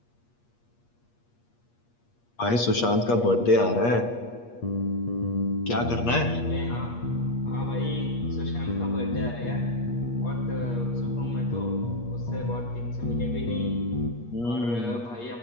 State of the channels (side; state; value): right; late; 8.4 ms